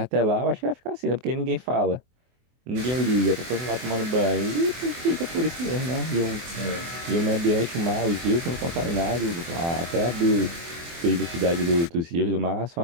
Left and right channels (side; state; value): left; late; 24 ms